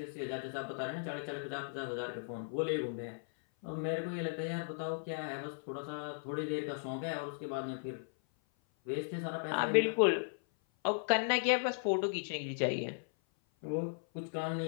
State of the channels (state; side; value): silent; right; 53 dB below the other